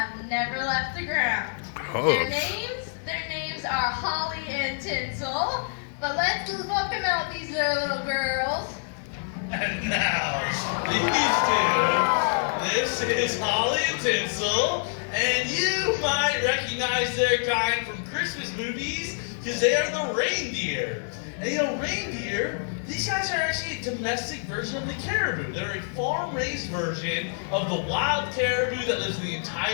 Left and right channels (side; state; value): right; silent; digital silence